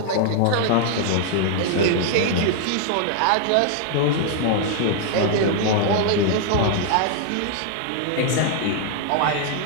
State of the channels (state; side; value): different; both; correlation 0.00